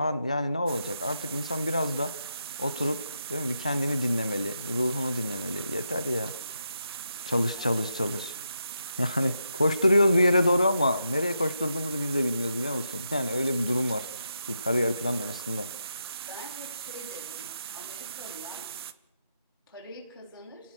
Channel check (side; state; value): both; inverted; correlation -0.83